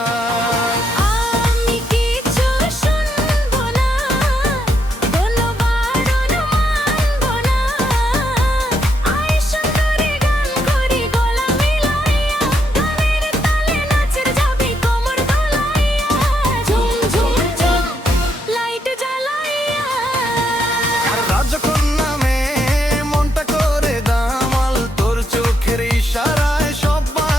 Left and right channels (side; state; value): both; normal; correlation 0.77